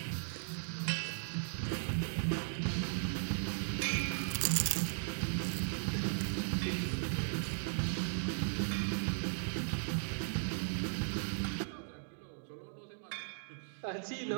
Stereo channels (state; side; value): silent; left; digital silence